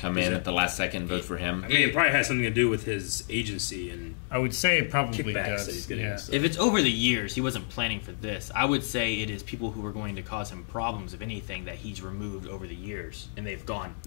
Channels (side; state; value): right; silent; 58 dB below the other